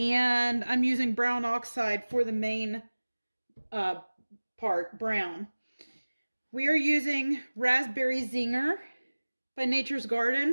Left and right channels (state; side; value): inverted; both; correlation -1.00